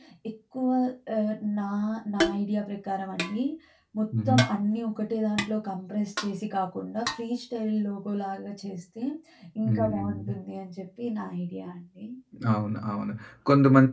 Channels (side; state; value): both; identical; correlation 1.00